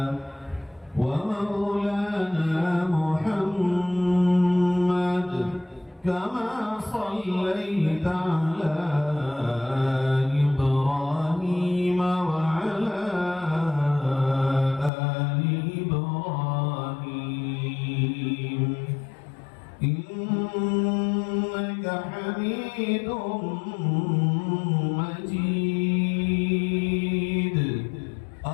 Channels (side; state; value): right; drops out; at 14.9 s